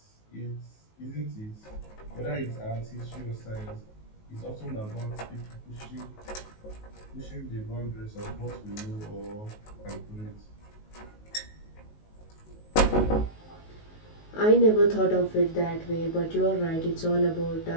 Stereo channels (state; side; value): late; right; 19 ms